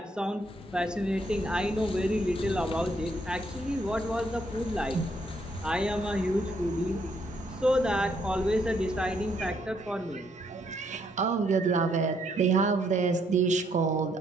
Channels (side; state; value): both; normal; correlation 0.71